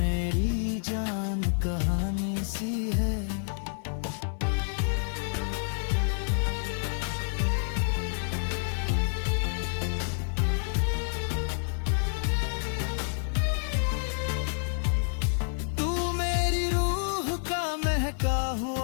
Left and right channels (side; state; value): right; silent; digital silence